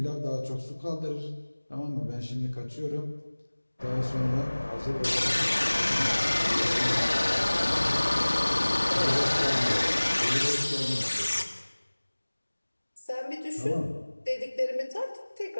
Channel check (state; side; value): inverted; both; correlation -1.00